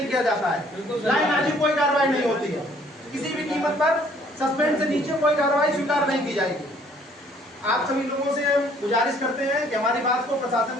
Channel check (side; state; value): both; normal; correlation 0.60